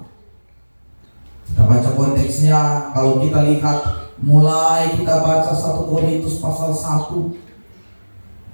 Kita baca konteksnya, kalau kita lihat mulai kita baca 1 Korintus pasal 1,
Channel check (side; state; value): both; inverted; correlation -1.00